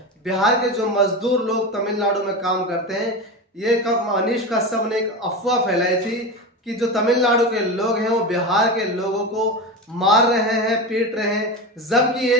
बिहार के जो मजदूर लोग तमिलनाडु में काम करते हैं, ये कब मनीष कश्यप ने एक अफवाह फैलाई थी कि जो तमिलनाडु के लोग हैं वो बिहार के लोगों को मार रहे हैं, पीट रहे हैं, जबकि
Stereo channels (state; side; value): normal; both; correlation 0.22